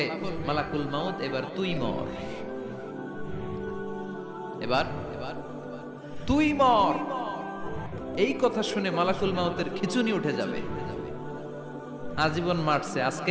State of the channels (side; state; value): both; identical; correlation 1.00